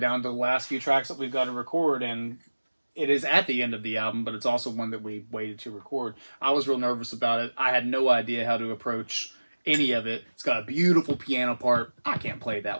to the last few tracks that we've got to record, and it is at the end of the album, but it's also one that we waited to record. I was real nervous about it. I had no idea how to approach any of it. It's got a beautiful piano part. I can't play it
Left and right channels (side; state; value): both; inverted; correlation -1.00